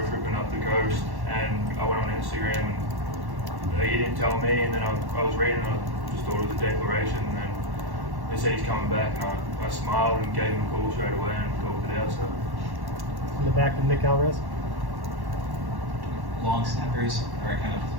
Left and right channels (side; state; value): left; late; 1.1 ms